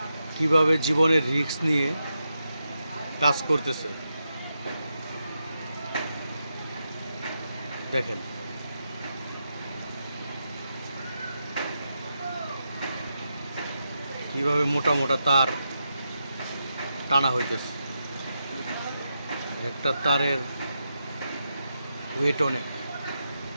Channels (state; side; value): inverted; both; correlation -0.86